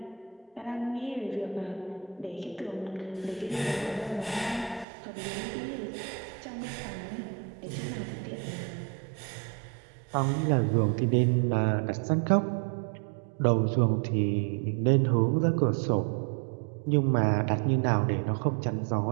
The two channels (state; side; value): drops out; left; at 4.9 s